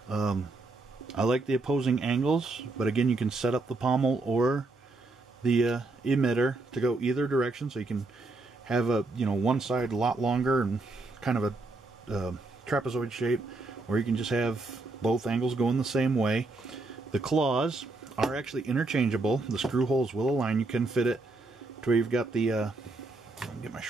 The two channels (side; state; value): left; quieter; 3.3 dB